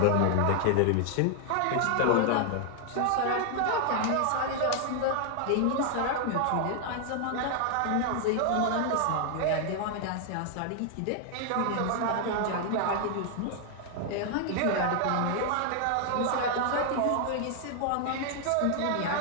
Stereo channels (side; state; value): both; different; correlation 0.00